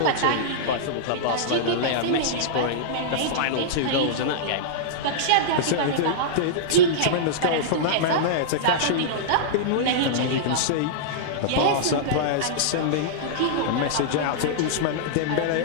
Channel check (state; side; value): different; both; correlation -0.02